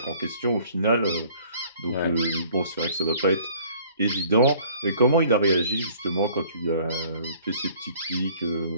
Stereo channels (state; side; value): inverted; both; correlation -0.55